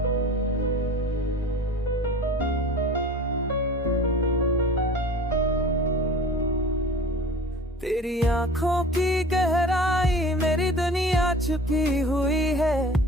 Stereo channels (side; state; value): both; normal; correlation 0.41